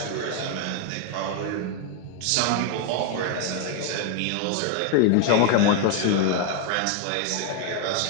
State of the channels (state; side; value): different; both; correlation 0.01